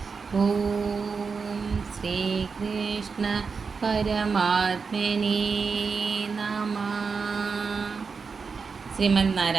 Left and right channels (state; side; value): quieter; left; 5.2 dB